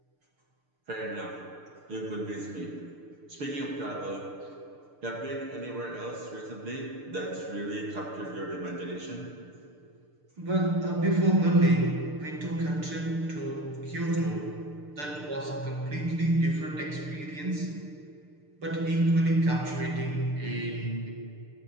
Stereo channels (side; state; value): left; late; 6.7 ms